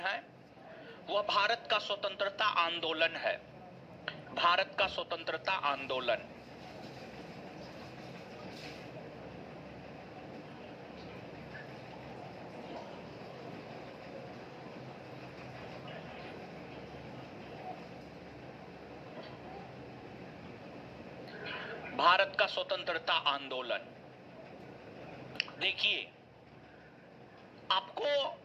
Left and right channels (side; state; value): both; identical; correlation 1.00